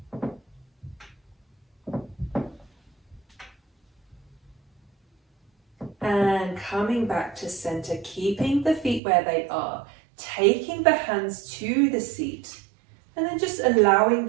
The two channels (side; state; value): left; drops out; at 9.0 s